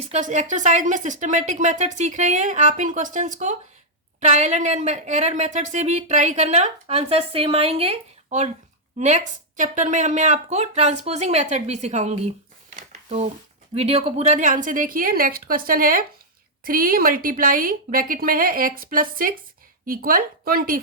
एक्सरसाइज में सिस्टमेटिक मेथड सीख रहे हैं. आप इन क्वेश्चंस को ट्रायल एंड एरर मेथड से भी ट्राई करना, आंसर सेम आएंगे. और नेक्स्ट चैप्टर में मैं आपको ट्रांसपोजिंग मेथड भी सिखाऊंगी, तो वीडियो को पूरा ध्यान से देखिए. नेक्स्ट क्वेश्चन है 3 मल्टीप्लाई ब्रैकेट में है x + 6 इक्वल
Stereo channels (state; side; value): normal; both; correlation -0.06